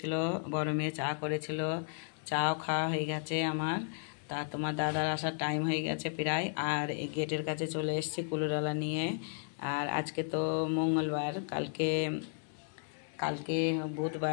বড় মেয়ে চা করেছিল, চাও খাওয়া হয়ে গেছে আমার। তা তোমার দাদার আসার টাইম হয়ে গেছে প্রায়। আর এই গেটের কাছে চলে এসেছি কুলোডালা নিয়ে। আর আজকে তো মঙ্গলবার, কালকে কালকে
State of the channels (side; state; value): right; silent; digital silence